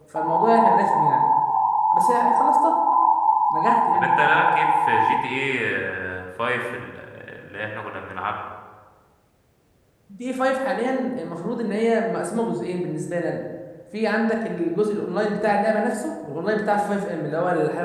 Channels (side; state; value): both; identical; correlation 1.00